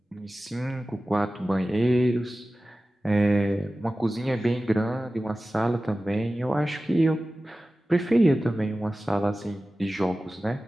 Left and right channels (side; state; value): both; normal; correlation 0.96